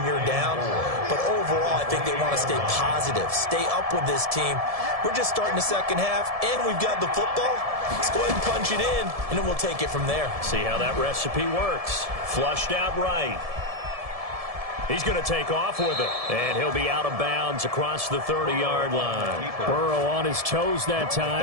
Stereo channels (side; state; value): left; late; 1.7 ms